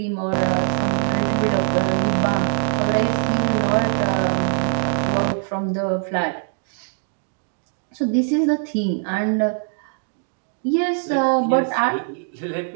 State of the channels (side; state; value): left; silent; 60 dB below the other